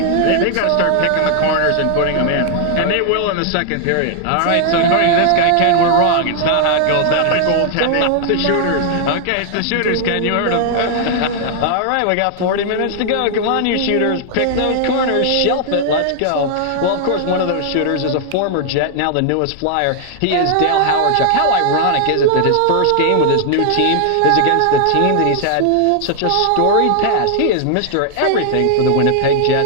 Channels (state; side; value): different; both; correlation 0.00